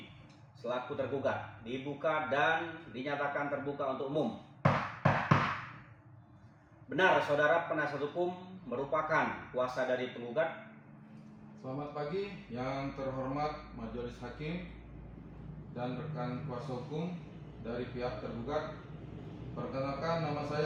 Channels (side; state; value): both; identical; correlation 1.00